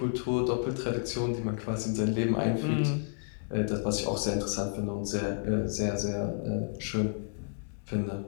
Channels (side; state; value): right; silent; 57 dB below the other